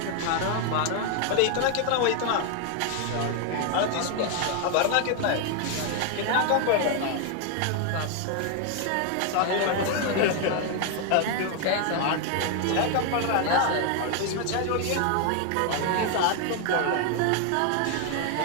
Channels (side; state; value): both; different; correlation 0.01